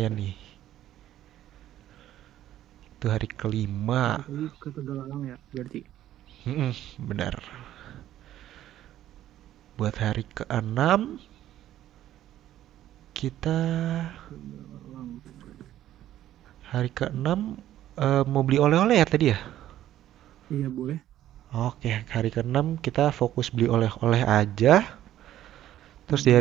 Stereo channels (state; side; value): quieter; left; 12.7 dB